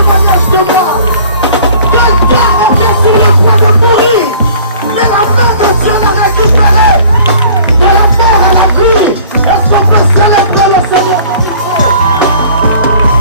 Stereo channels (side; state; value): both; inverted; correlation -0.50